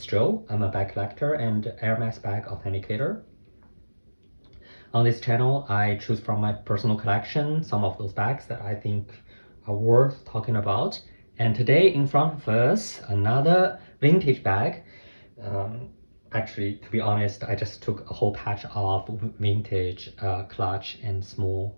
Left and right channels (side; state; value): both; inverted; correlation -1.00